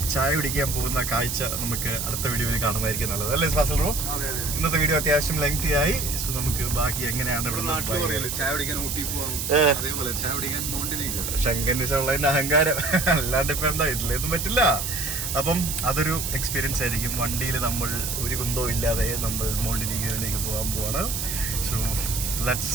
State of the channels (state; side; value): noise; right; hiss, 3 dB below the sound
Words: ചായ കുടിക്കാൻ പോകുന്ന കാഴ്ച നമുക്ക് അടുത്ത വീഡിയോയിൽ കാണുന്നതായിരിക്കും നല്ലത്, അല്ലേ ഫാസിൽ ബ്രോ? ഇന്നത്തെ വീഡിയോ അത്യാവശ്യം ലെങ്തി ആയി. സോ നമുക്ക് ബാക്കി എങ്ങനെയാണ് ഇവിടെ ചായ കുടിക്കാൻ ഊട്ടി പോവാം, അതേപോലെ ചായ കുടിക്കാൻ മോണ്ടിനീഗ്രോ. ശങ്കനിസുള്ളതിന്റെ അഹങ്കാരം, അല്ലാണ്ട് ഇപ്പൊ എന്താ ഇതിലൊന്നും പറ്റില്ല. അപ്പം അതൊരു എക്സ്പീരിയൻസ് ആയിരിക്കും. വണ്ടിയിൽ നമ്മൾ ഒരു കുന്തവും ഇല്ലാതെ നമ്മൾ മോണ്ടിനീഗ്രോയിലേക്ക് പോകാൻ പോവാണ്. So let's